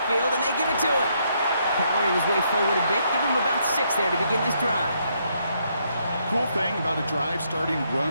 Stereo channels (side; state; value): both; inverted; correlation -0.74